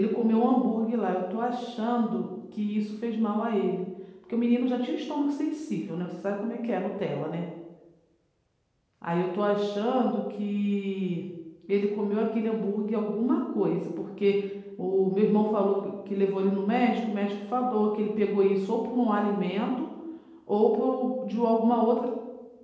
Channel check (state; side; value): identical; both; correlation 1.00